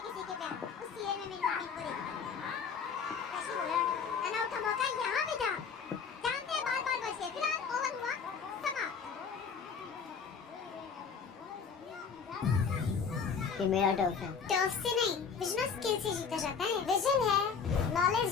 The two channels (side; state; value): right; quieter; 6.1 dB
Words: किसी के प्यार, उस सीरियल में मेरी मम्मी को देखती है। कैसी बोला, रन आउट का मौका यहाँ भी था, जानते हैं बार बार बच गए। फिलहाल ओवर हुआ समाप्त। ये मेरा टर्फ है। टर्फ से नहीं, विजन और स्किल से जीता जाता है। विजन है, नॉलेज